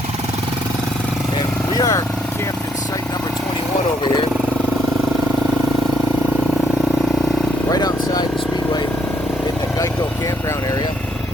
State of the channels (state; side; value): normal; both; correlation 0.71